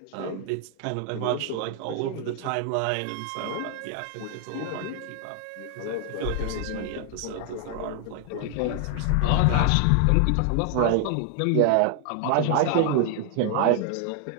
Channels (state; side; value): different; both; correlation 0.00